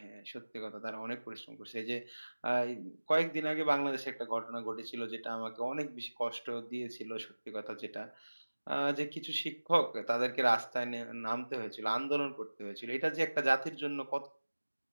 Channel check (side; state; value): both; inverted; correlation -1.00